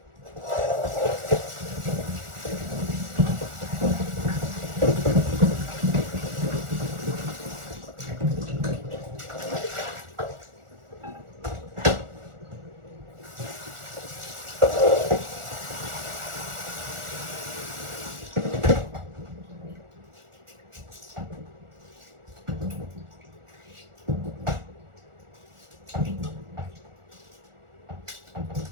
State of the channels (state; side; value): late; left; 1.4 ms